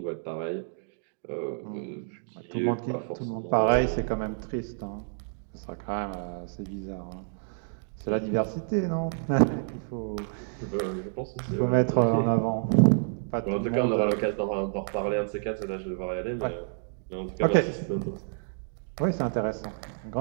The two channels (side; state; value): left; silent; digital silence